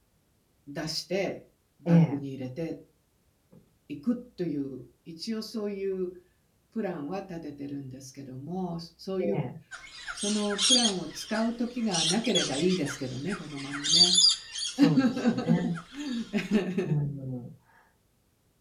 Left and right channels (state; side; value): identical; both; correlation 1.00